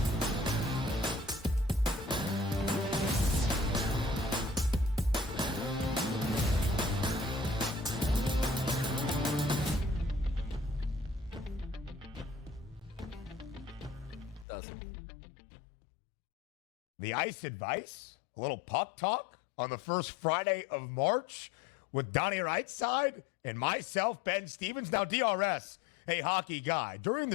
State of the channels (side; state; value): right; drops out; at 14.5 s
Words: The ice advice, a little puck talk on the first Friday of March with Donnie Rightside and myself, Ben Stevens. Now, DRS, a hockey guy. During